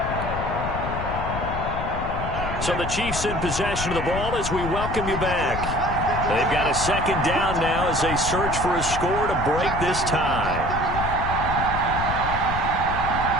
So the Chiefs in possession of the ball as we welcome you back. They've got a 2nd down now as they search for a score to break this tie.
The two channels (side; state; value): left; noise; rumble, 5 dB below the sound